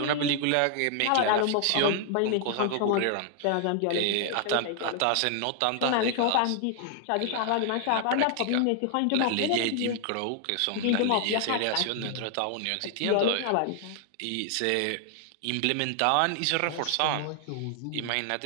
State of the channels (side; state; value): both; different; correlation 0.00